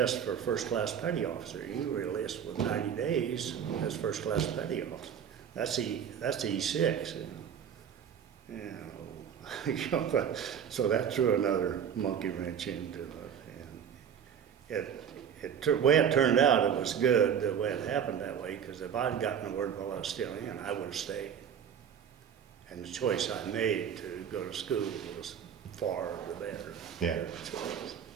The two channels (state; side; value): quieter; left; 8.2 dB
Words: for first-class petty officer. You were enlisted with 90 days as first-class petty officer. That's E6. So that threw another monkey wrench into it. And the way it turned out, it was good the way it happened that way, because if I'd gotten the word while I was still in, I would have stayed. And the choice I made to go to school was far the better. Yeah. Choice.